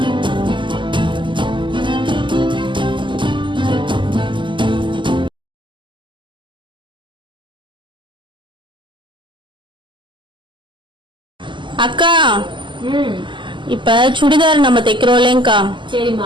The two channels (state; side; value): late; left; 0.24 ms